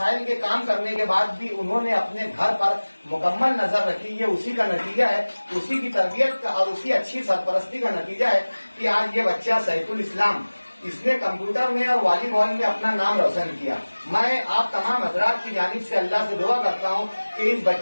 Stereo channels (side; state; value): both; inverted; correlation -1.00